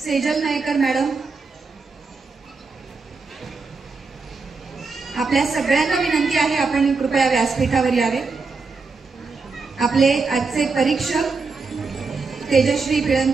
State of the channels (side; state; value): left; quieter; 4.4 dB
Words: सेजल नायकर मॅडम। आपल्या सगळ्यांना विनंती आहे आपण कृपया व्यासपीठावर यावे। आपले आजचे परीक्षक तेजश्री